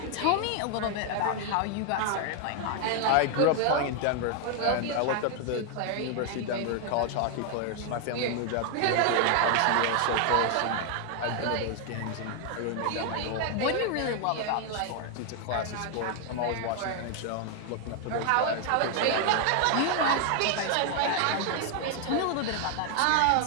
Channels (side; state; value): both; different; correlation 0.00